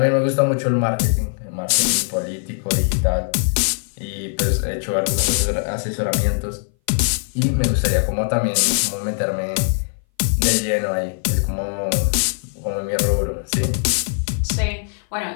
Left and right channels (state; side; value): silent; right; 59 dB below the other